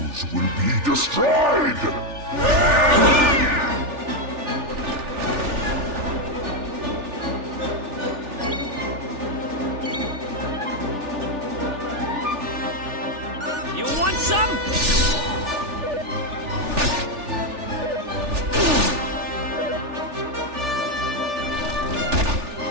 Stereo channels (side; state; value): left; late; 3.4 ms